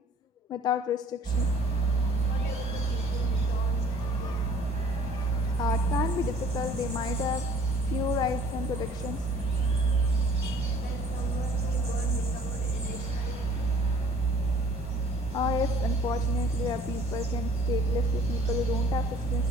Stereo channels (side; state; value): both; normal; correlation 0.54